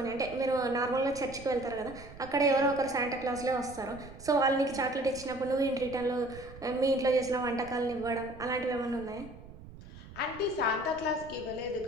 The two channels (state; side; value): noise; right; rumble, 17 dB below the sound